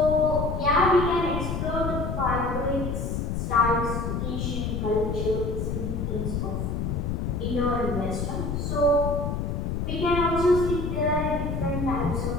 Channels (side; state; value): left; noise; rumble, 2 dB below the sound